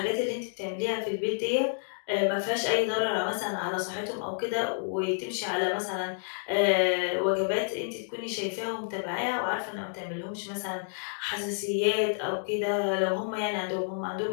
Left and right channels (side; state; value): right; silent; digital silence